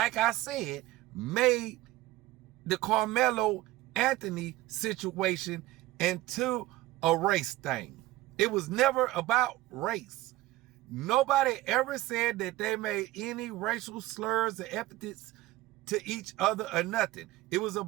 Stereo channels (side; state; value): left; quieter; 17.1 dB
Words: I said, made the Carmelo Anthony situation into a race thing. It was never about race. Nobody ever said that they made any racial slurs or epithets to each other or nothing. It was